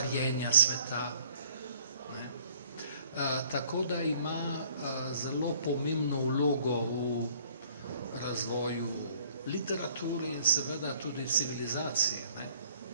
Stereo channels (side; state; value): both; inverted; correlation -0.58